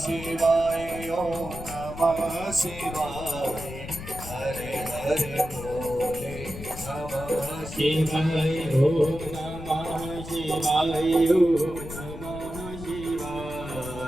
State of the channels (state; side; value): noise; left; rumble, 11 dB below the sound